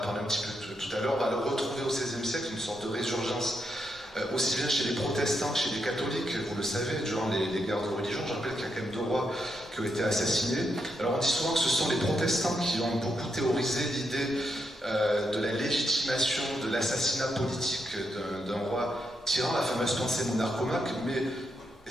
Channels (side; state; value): both; normal; correlation 0.81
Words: un petit peu tout à l'heure, on va le retrouver au XVIe siècle, une sorte de résurgence, aussi bien chez les protestants que chez les catholiques, vous le savez, durant les guerres de religion. Je rappelle qu'il y a quand même 2 rois qui ont été assassinés. Alors on dit souvent que ce sont les protestants qui ont beaucoup théorisé l'idée de la légitimation de l'assassinat politique d'un roi tyran, la fameuse pensée monarchomaque, mais